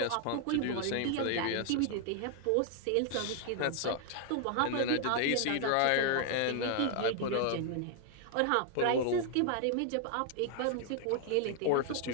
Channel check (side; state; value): both; different; correlation 0.00